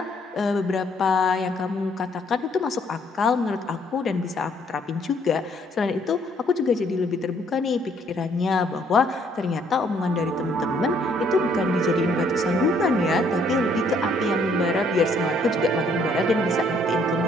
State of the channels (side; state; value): both; normal; correlation 0.66